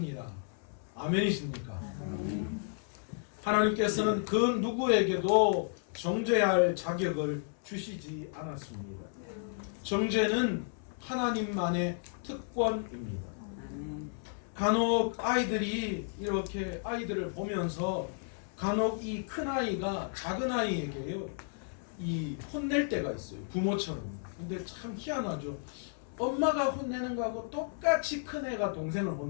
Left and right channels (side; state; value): right; silent; 56 dB below the other